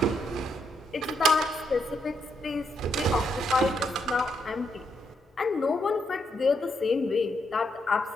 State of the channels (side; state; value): both; normal; correlation 0.78